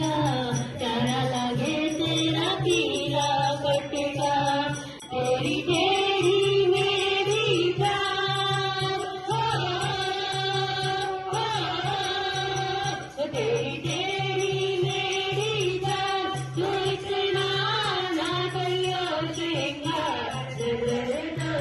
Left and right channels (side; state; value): both; identical; correlation 1.00